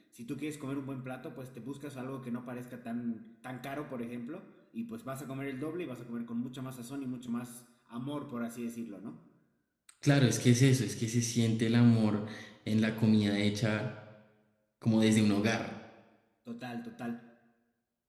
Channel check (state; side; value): identical; both; correlation 1.00